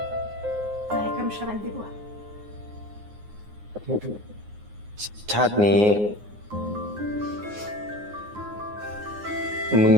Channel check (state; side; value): late; left; 9.6 ms